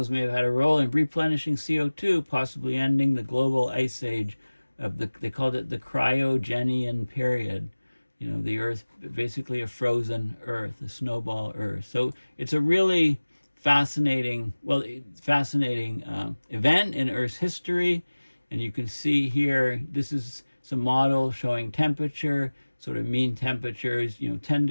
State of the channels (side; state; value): both; inverted; correlation -1.00